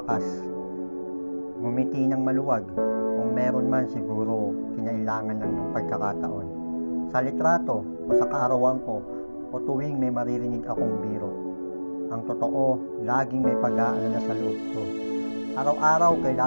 ngumiti ng maluwag. Kung meron man, siguro kinailangan lang ng pagkakataon. Sa litrato o sa kaarawan ko o tuwing may maririnig akong biro. Ang totoo, laging may pag-aalala sa loob ko. Araw-araw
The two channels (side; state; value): both; inverted; correlation -1.00